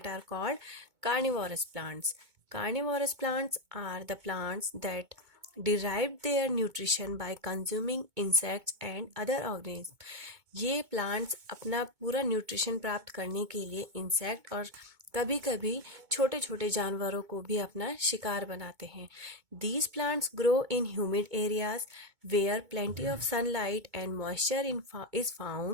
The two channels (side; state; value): left; late; 2.2 ms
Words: are called carnivorous plants. Carnivorous plants are the plants that derive their nutrition by consuming insects and other organisms. ये plants अपना पूरा न्यूट्रिशन प्राप्त करने के लिए इंसेक्ट और कभी कभी छोटे छोटे जानवरों को भी अपना शिकार बनाते हैं. These plants grow in humid areas where plenty of sunlight and moisture is